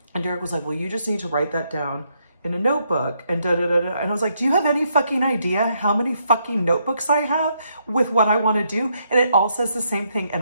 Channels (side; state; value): both; inverted; correlation -0.76